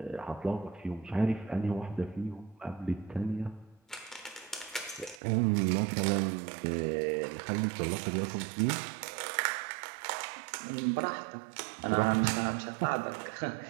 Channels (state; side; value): drops out; left; at 5.2 s